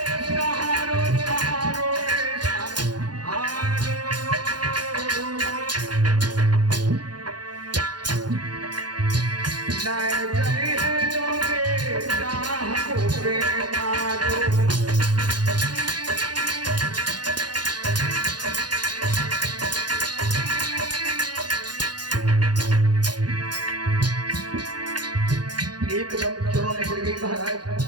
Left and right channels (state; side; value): late; left; 0.70 ms